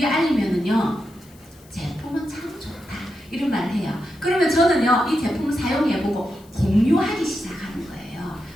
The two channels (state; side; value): noise; left; hiss, 27 dB below the sound